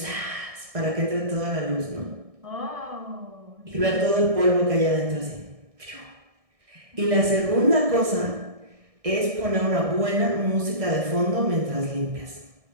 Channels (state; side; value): late; left; 1.6 ms